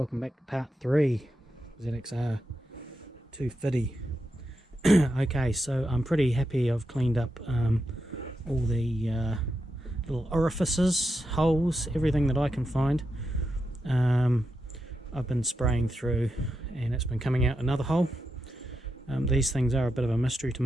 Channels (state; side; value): normal; both; correlation 0.86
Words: back to part 3 ZXR 250. Okay, so I'm pretty happy I've cleaned up all the little orifices, holes, everything that I can find. I've been spraying through and it's been coming out another hole. These things are a bit of a mystery to